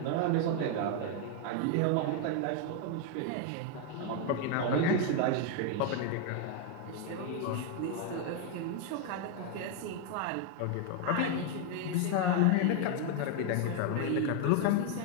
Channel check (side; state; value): both; different; correlation 0.01